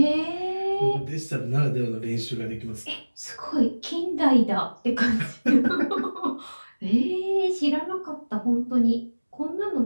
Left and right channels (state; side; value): inverted; both; correlation -1.00